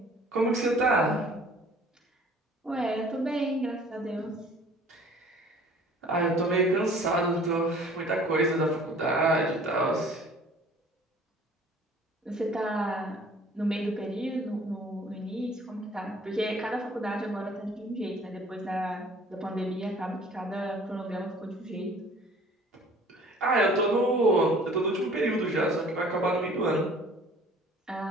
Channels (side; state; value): both; normal; correlation 0.51